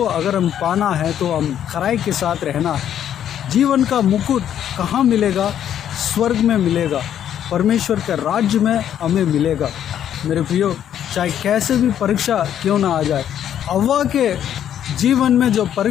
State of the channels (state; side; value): quieter; right; 10.1 dB